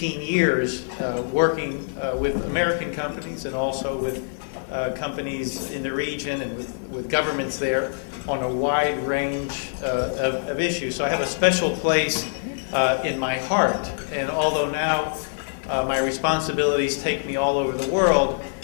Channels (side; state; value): right; silent; digital silence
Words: years working with American companies and also with companies in the region and with governments there on a wide range of issues. So I have a special place in my heart. And although now my responsibilities take me all over the world,